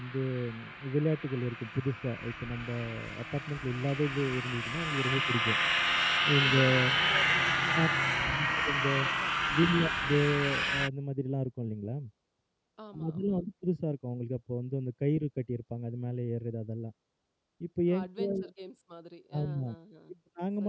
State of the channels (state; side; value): identical; both; correlation 1.00